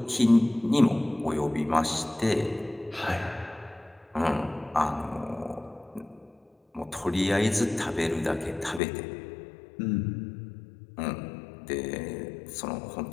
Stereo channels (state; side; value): drops out; right; at 8.8 s